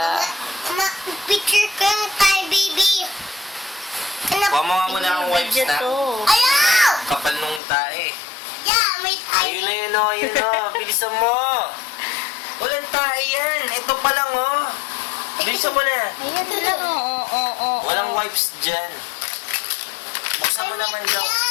Picture ka na tayo, baby. Kuha mo nga muna ang wipes Video na. to. Ayaw! Kapal nung tae. Yeah, may tayo. Ayun na yun o, ayun o. Bilisan mo. Walang tae yan. Ito pa lang o. Bilisan mo na. Ayan lang, oo. Walang wipes dyan. Buksan mo naman daw.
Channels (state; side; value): drops out; right; at 7.6 s